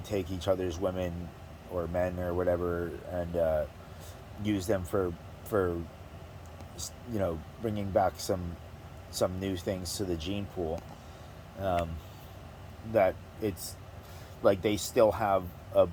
each other's women or men or whatever and use them for bringing back some new things to the gene pool, that it's like they still have a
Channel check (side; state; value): both; identical; correlation 1.00